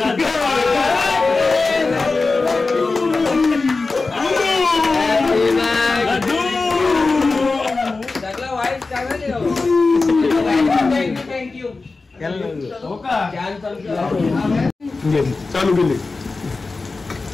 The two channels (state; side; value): quieter; right; 3.8 dB